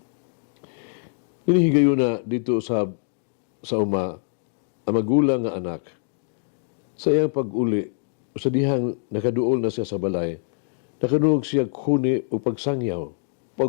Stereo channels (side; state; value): right; silent; digital silence